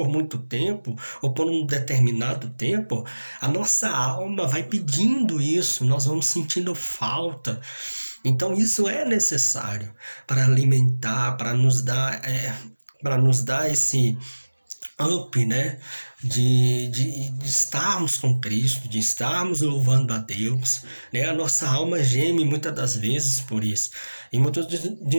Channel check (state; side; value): inverted; both; correlation -1.00